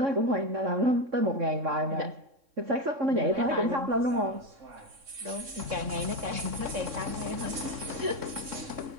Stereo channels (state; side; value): late; left; 3.6 ms